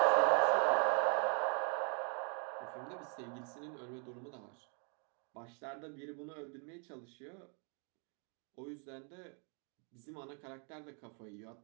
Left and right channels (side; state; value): left; quieter; 39.4 dB